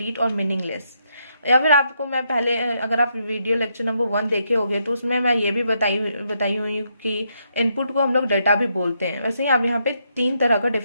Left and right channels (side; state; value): both; inverted; correlation -0.78